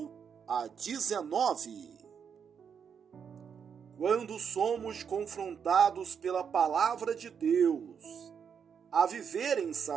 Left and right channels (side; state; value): left; quieter; 7.1 dB